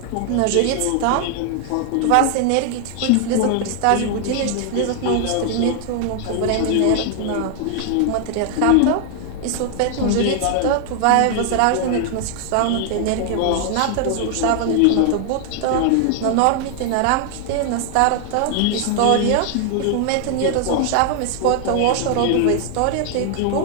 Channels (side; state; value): both; different; correlation 0.00